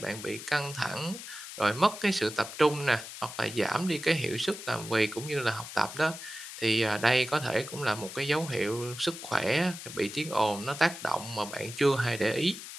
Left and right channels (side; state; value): left; noise; hiss, 11 dB below the sound